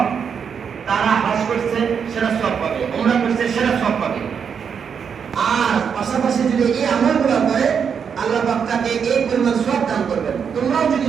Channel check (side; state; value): left; quieter; 6.9 dB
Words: তারা হজ করছে সেটা সওয়াব পাবে, উমরা করছে সেটা সওয়াব পাবে, আর পাশাপাশি যদি এই আমলগুলো করে আল্লাহ পাক তাকে এই পরিমাণ সওয়াব দান করবেন। তোমরাও যদি